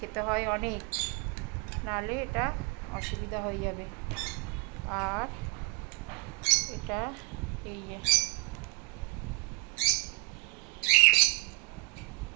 হয় অনেক, নাহলে এটা অসুবিধা হয়ে যাবে। আর এটা এই যে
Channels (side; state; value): left; quieter; 33.1 dB